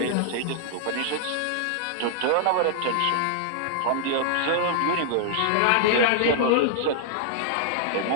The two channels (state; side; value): different; both; correlation -0.01